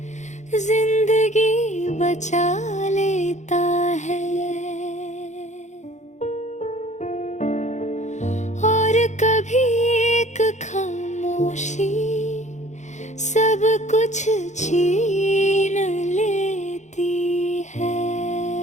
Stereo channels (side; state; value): right; late; 0.34 ms